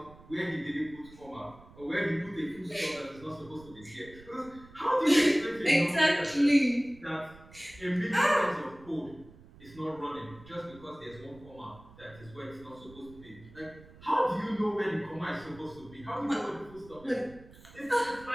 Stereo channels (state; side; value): noise; right; rumble, 21 dB below the sound